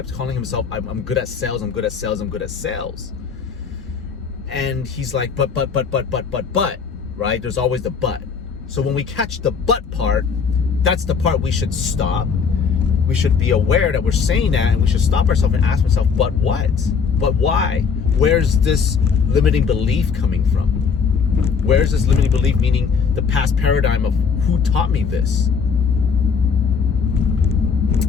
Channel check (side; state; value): right; quieter; 5.9 dB